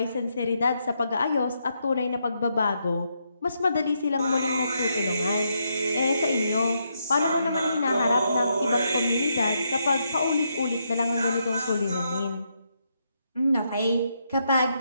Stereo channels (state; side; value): inverted; both; correlation -0.79